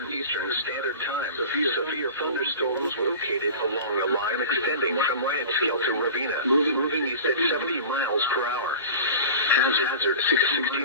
Eastern Standard Time, severe thunderstorms located along the line extending from Riottsville to Ravenna, moving east at 70 miles per hour. Hazard 60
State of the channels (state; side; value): inverted; both; correlation -0.35